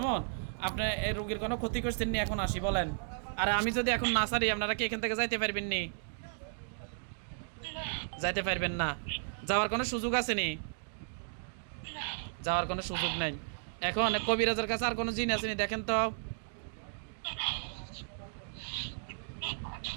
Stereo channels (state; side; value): silent; left; digital silence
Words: আপনি এই রোগীর কোনো ক্ষতি করছেন নি, এখন আসি বলেন। আরে আমি যদি এখন না ছাড়ি, আপনারা কি এখান থেকে যাইতে পারবেন নি? যাইতে পারবেন না। যাওয়ার কোনো সুযোগ আছে নি? যাওয়ার কোনো সুযোগ নেই। এখন কবিরাজের কাছে আর কোনো জিন আছে নি? দেখেন তো,